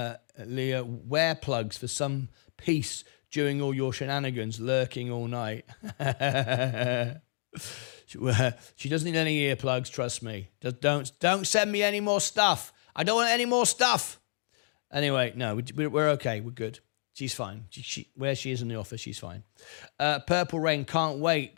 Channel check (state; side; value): silent; right; digital silence